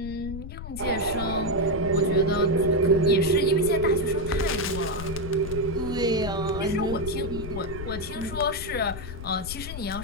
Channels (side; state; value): left; noise; rumble, 9 dB below the sound